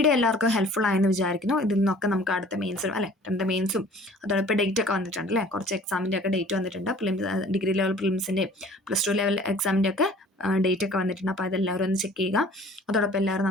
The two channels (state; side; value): normal; both; correlation 0.50